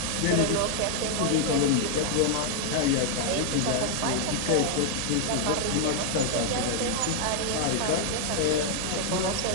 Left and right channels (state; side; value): different; both; correlation 0.00